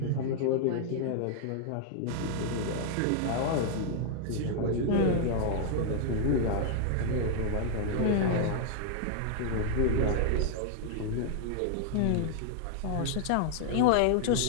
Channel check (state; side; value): different; both; correlation -0.01